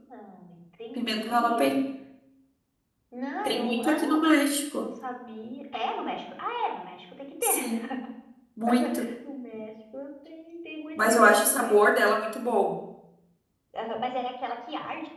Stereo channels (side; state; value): both; identical; correlation 1.00